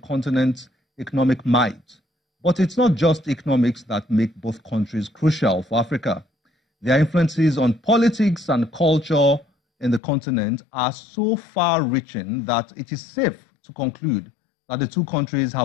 economic might. But it's not just economics that make both countries crucial for Africa. Their influences on politics and culture in the continent are so far-reaching that it is safe to conclude that the two countries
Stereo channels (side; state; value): right; drops out; at 10.0 s